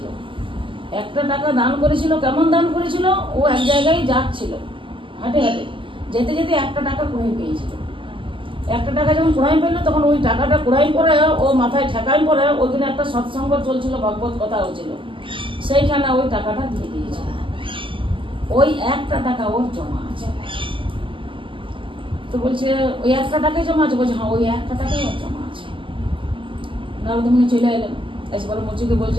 একটা টাকা দান করেছিল। কেমন দান করেছিল? ও এক জায়গায় যাচ্ছিল, হাঁটে হাঁটে যেতে যেতে একটা টাকা কুড়াই পেয়েছিল। একটা টাকা যখন কুড়াই পেলো, তখন ওই টাকাটা কুড়াই পরে ও মাথায় ঠেকাই পরে ওইখানে একটা সৎসঙ্গ চলছিল, ভগবত কথা হচ্ছিল, সেইখানে ওই টাকাটা দিয়ে দিয়েছিল। ওই একটা টাকা ওর জমা আছে। তো বলছে ওই একটা টাকাই জমা আছে? বলছে হ্যাঁ, ওই একটা টাকাই ওর জমা আছে। নারদমুনি চলে এলেন, এসে বলে মুচিকে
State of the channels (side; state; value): left; late; 0.25 ms